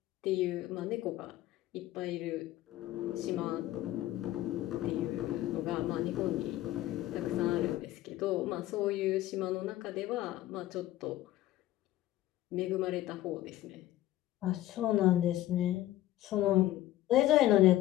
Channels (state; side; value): quieter; right; 14.9 dB